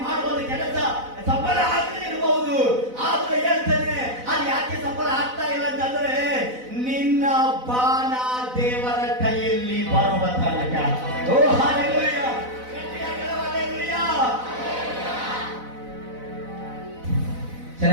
ಮಾಡುವಂತ ಕೆಲಸ ಸಫಲ ಆಗದೆ ಇರಬಹುದು. ಆದ್ರೆ ಹೇಳ್ತೇನೆ, ಅದು ಯಾಕೆ ಸಫಲ ಆಗ್ತಾ ಇಲ್ಲ ಅಂತಂದ್ರೆ ನಿನ್ನ ಬಾಣ ದೇವರ ಕೈಯಲ್ಲಿ ಬರುವ ತನಕ. ಓ ಹಲ್ಲೆಲೂಯಾ. ಹಲ್ಲೆಲೂಯಾ.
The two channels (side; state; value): left; late; 4.0 ms